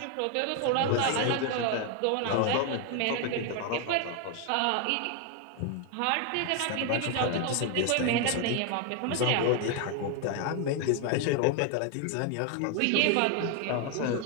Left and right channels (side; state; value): both; different; correlation 0.01